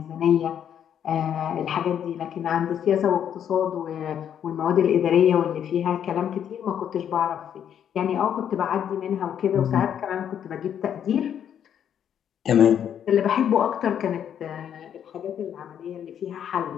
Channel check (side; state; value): right; quieter; 9.2 dB